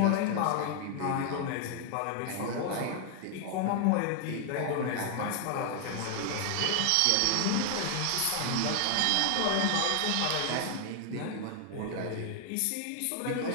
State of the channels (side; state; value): both; different; correlation 0.00